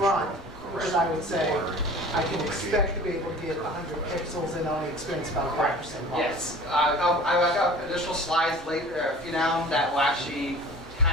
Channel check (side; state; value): both; normal; correlation 0.43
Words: Because I would say, I can expect to be able to get 100 pixels and only experience about 5% loss. Yes. I've got additional slides later, a few down, that will actually